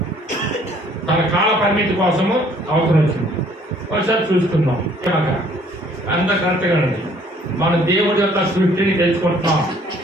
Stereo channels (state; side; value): normal; both; correlation 0.59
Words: తన కాల పరిమితి కోసము అవసరం వచ్చింది. ఒకసారి చూసుకుందాం. కనుక అంత కరెక్ట్గా ఉంది. మనం దేవుడి యొక్క సృష్టిని తెలుసుకుంటున్నాం,